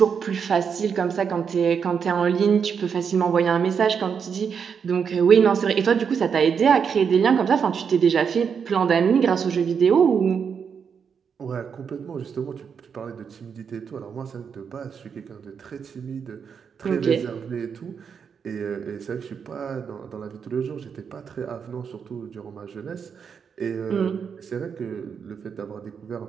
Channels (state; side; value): quieter; left; 6.7 dB